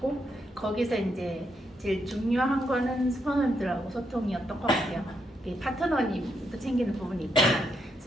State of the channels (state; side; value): normal; both; correlation 0.79